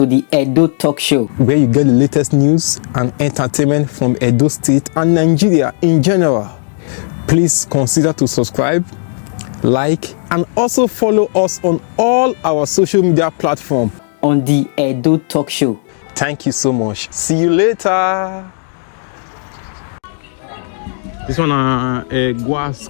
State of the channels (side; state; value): right; silent; digital silence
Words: the Edo Talk Show, where you get the latest news and entertainment from Edo State and Nigeria in general. Please consider to subscribe, like, and also follow us on all our social media platforms. on the Edo Talk Show. Thank you so much. See you later. This one